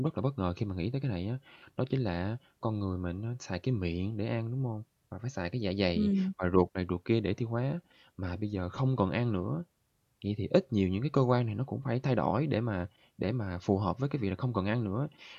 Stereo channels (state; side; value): identical; both; correlation 1.00